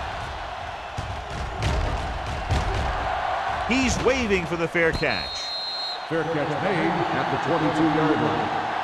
He's waving for the fair catch. Fair catch made at the 22-yard line.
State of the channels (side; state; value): both; identical; correlation 1.00